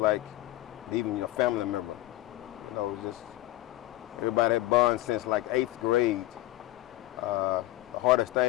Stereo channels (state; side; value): quieter; right; 16.5 dB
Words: even a family member. Just everybody had bond since like 8th grade. The hardest